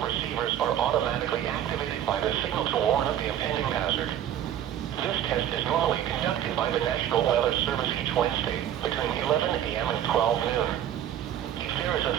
receivers are automatically activated by the signal to warn of the impending hazard. This test is normally conducted by the National Weather Service each Wednesday between 11 a.m. and 12 noon. If there is a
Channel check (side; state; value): left; quieter; 10.8 dB